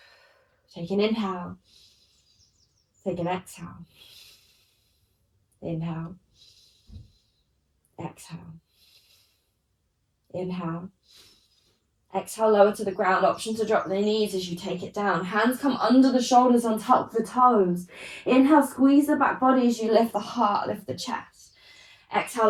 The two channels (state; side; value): identical; both; correlation 1.00